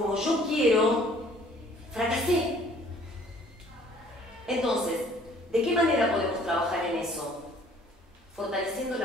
yo quiero, fracasé. Entonces, ¿de qué manera podemos trabajar en eso? Fortaleciendo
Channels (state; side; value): normal; both; correlation 0.56